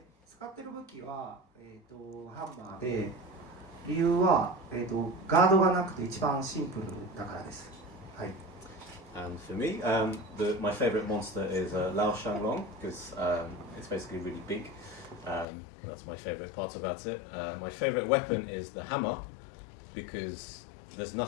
使ってる武器はハンマーで、理由はガードがなくて一番シンプルだからです。はい。And for me, my favorite monster is Lao Shanglong because it's basically really big. That's my favorite part about it. My favorite weapon is the hammer because there's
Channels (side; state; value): right; drops out; at 15.5 s